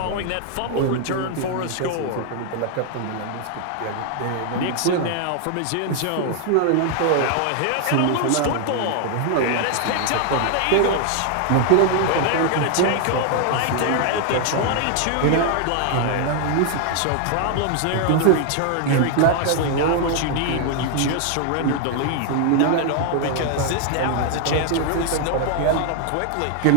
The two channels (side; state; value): both; different; correlation 0.00